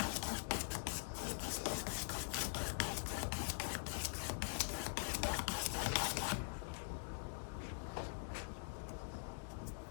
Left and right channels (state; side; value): silent; right; digital silence